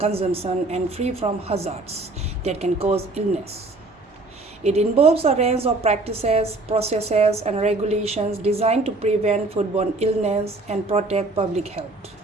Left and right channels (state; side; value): quieter; left; 3.0 dB